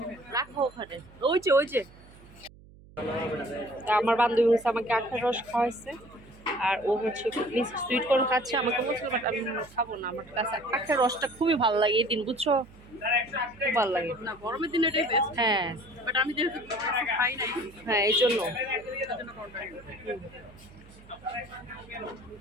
রাখো ওখানে, ওই যে তা আমার বান্ধবী হচ্ছে আমাকে আখের রস খাওয়াইছে আর ও হচ্ছে সুইট কর্ন খাচ্ছে। আমাকে বলছিল বাট আমি খাবো না, আমার কাছে আখের রসটা খুবই ভালো লাগে এই দিন, বুঝছো? খুব ভালো লাগে না গরমের দিনে এটাই বেস্ট, হ্যাঁ বাট আমি যেহেতু খাই নাই হ্যাঁ এই জন্য।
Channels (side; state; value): right; noise; hum, 23 dB below the sound